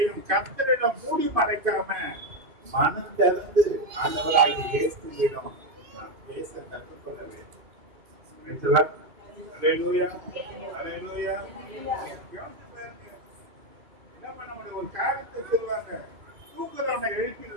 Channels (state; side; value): late; left; 2.5 ms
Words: கர்த்தரிடம் மூடி மறைக்காம மனம் திறந்து ஆண்டவராகிய இயேசுவிடம் நாம் பேச கற்றுக்கொள்ள வேண்டும். அல்லேலூயா, அல்லேலூயா. என்ன பண்ண முடியும்? ஒரு காரியத்தை சொல்லுவாங்க, தூக்குறவனை